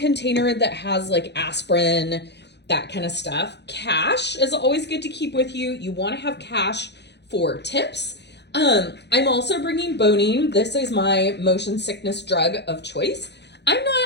that has like aspirin, that kind of stuff. Cash is always good to keep with you. You want to have cash for tips. I'm also bringing Bonine. This is my motion sickness drug of choice. I'm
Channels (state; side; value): late; right; 0.50 ms